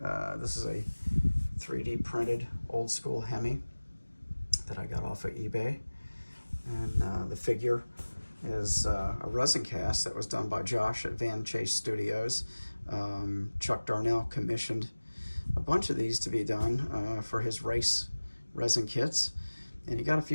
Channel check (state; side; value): inverted; both; correlation -1.00